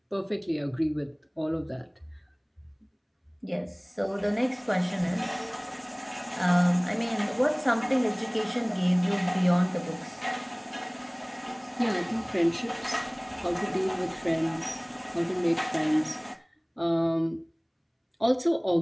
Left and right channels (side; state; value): both; identical; correlation 1.00